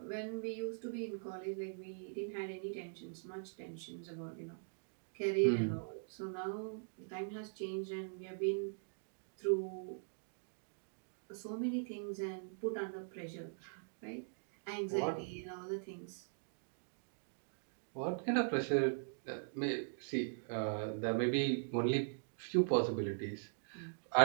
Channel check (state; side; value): silent; left; digital silence